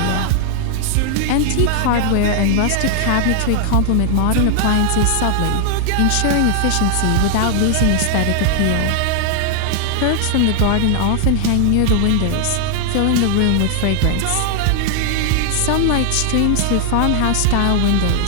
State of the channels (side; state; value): both; different; correlation 0.00